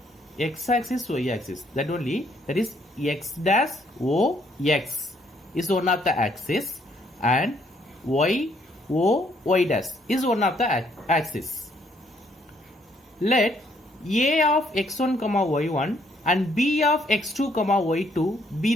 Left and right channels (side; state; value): both; normal; correlation 0.68